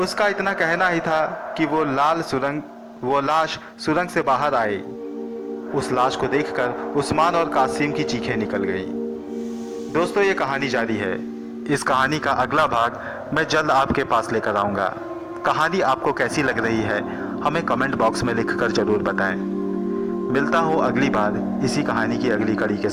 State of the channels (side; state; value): both; identical; correlation 1.00